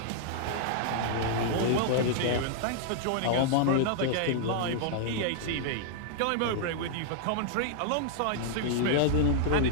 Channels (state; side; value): different; both; correlation -0.01